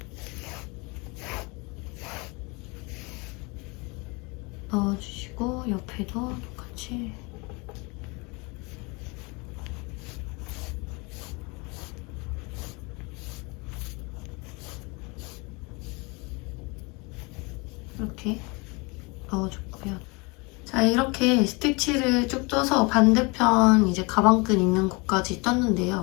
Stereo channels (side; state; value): right; quieter; 28.1 dB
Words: 넣어주시고 옆에도 똑같이 이렇게 넣어줬고요. 자, 이렇게 스티치를 쭉 떠서 반대편 이제 가방끈 있는 곳까지